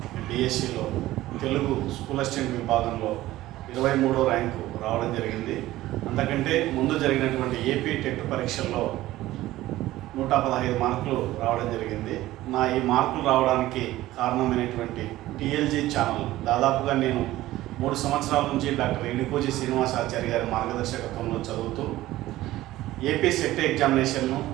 డిఎస్సిలో తెలుగు స్కూల్ అసిస్టెంట్ విభాగంలో 23వ ర్యాంకు రావడం జరిగింది. అంతకంటే ముందు జరిగినటువంటి ఏపీ టెట్ పరీక్షల్లో 115 మార్కులు రావడం జరిగింది. నా ఈ మార్కులు రావడానికి కారణమైనటువంటి టీఎల్జీ ఛానల్ దాదాపుగా నేను 3 సంవత్సరాల నుంచి డాక్టర్ ఎడికోజీ శ్రీనివాసాచారి గారి మార్గదర్శకత్వంలో చదువుతూ ఏపీ సెట్ ఎగ్జామినేషన్ను,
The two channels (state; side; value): quieter; left; 16.0 dB